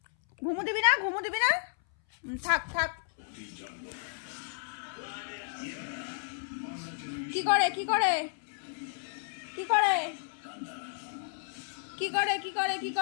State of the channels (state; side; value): silent; right; 56 dB below the other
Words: ঘুমো দিবি না, ঘুমো দিবি না? থাক থাক। কি করে, কি করে, কি করে, কি করে, কি করে, কি